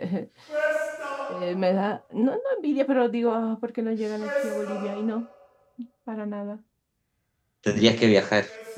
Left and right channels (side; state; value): both; identical; correlation 1.00